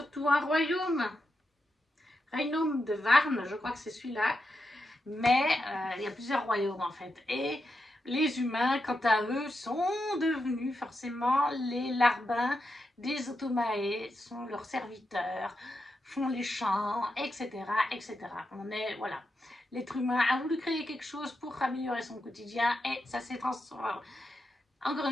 un royaume. De Varne, je crois que c'est celui-là. Mais il y a plusieurs royaumes en fait. Et Les humains, quant à eux, sont devenus forcément les larbins des Automae, sont leurs serviteurs, font les chants, etc., etc. On est, voilà. L'être humain a voulu créer quelque chose pour améliorer son quotidien et ça s'est transformé. Encore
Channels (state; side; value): normal; both; correlation 0.87